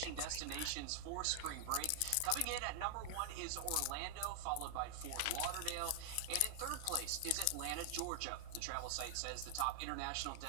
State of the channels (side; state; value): both; different; correlation 0.00